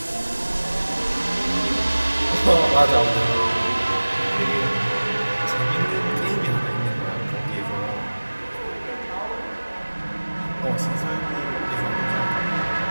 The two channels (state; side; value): inverted; both; correlation -1.00